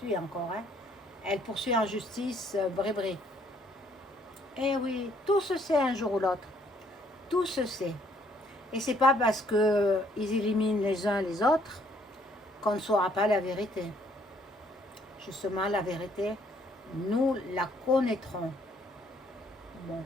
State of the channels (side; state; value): both; normal; correlation 0.65